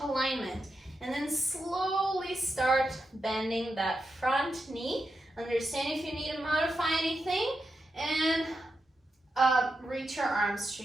alignment. And then slowly start bending that front knee. Understand if you need to modify anything, and reach your arms to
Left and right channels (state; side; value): normal; both; correlation 0.87